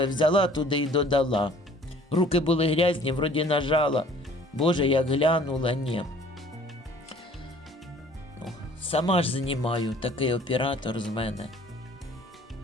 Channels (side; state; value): both; normal; correlation 0.53